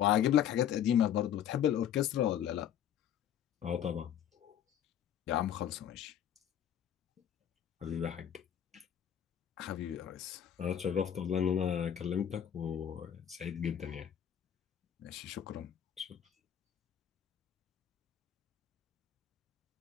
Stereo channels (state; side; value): quieter; right; 9.8 dB